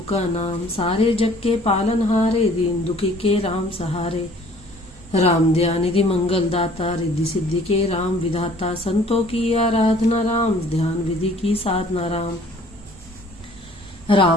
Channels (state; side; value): normal; both; correlation 0.54